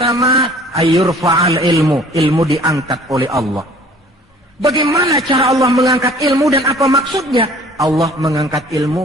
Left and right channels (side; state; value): both; normal; correlation 0.52